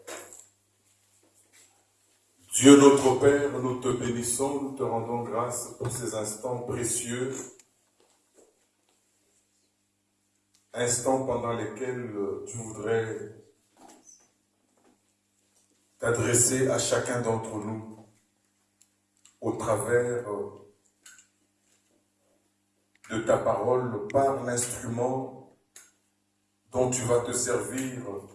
Dieu notre Père, nous te bénissons, nous te rendons grâce pour ces instants précieux, instants pendant lesquels tu voudrais t'adresser à chacun d'entre nous au travers de ta parole par l'instrument dont tu vas te servir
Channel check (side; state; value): both; identical; correlation 1.00